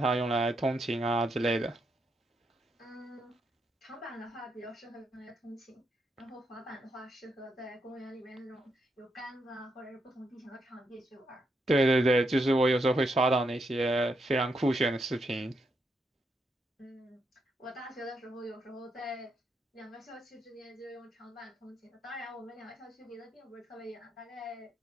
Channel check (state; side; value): normal; both; correlation 0.80